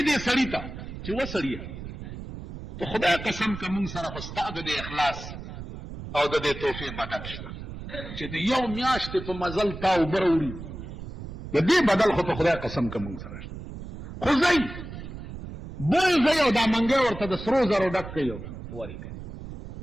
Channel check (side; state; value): right; noise; rumble, 10 dB below the sound